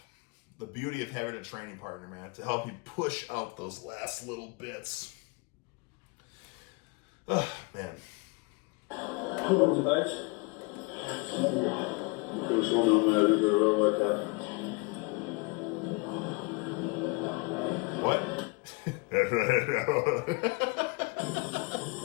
the beauty of having a training partner, man, to help you push out those last little bits. Oh, man. What's it about? Who's one on there? Did a real workout. What?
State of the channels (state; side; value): quieter; right; 28.8 dB